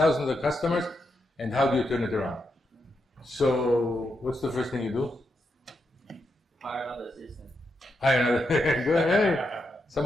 of customers, and how do you turn it around? So, what's the first thing you do? Hire another assistant. Hire another. Good. Hey,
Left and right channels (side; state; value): both; normal; correlation 0.83